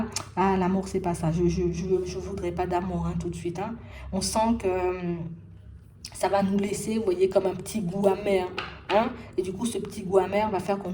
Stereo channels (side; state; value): both; identical; correlation 1.00